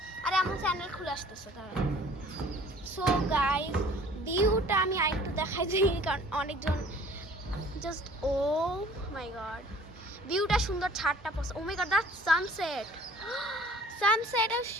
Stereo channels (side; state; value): both; normal; correlation 0.51